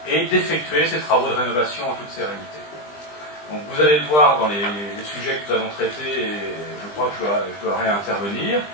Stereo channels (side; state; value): right; late; 20 ms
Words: et d'effectuer ces travaux de rénovation en toute sérénité. Donc vous allez le voir dans les sujets que nous allons traiter, et je crois que je dois réintervenir,